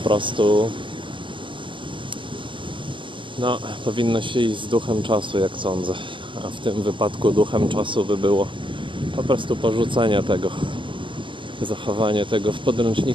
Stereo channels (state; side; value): late; left; 0.24 ms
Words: powinno się iść z duchem czasu, jak sądzę. A w tym wypadku duchem czasu by było po prostu porzucenie tego, zachowanie tego w